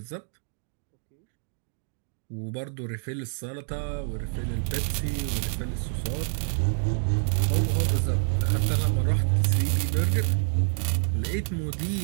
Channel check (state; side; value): silent; left; digital silence